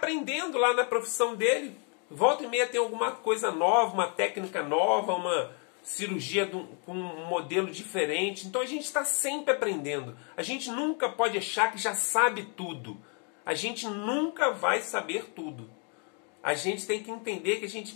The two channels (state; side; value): quieter; right; 38.3 dB